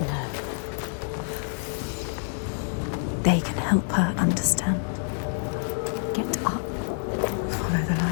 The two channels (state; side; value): silent; right; 60 dB below the other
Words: know. They can help her understand. Get up. Follow the